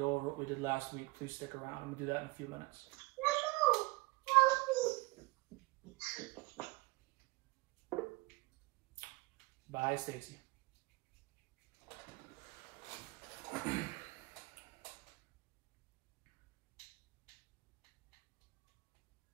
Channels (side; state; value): left; quieter; 24.1 dB